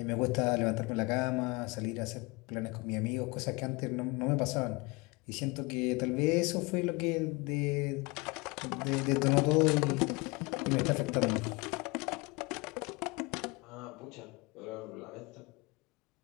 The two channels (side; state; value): right; quieter; 26.3 dB